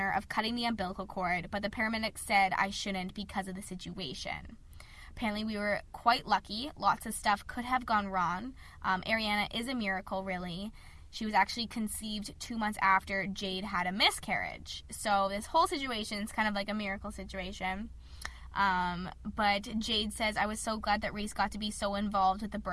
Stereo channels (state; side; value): identical; both; correlation 1.00